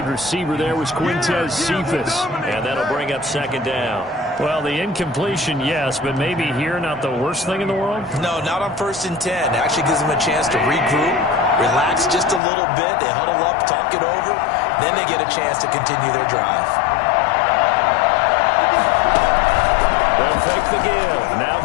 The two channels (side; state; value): right; drops out; at 12.4 s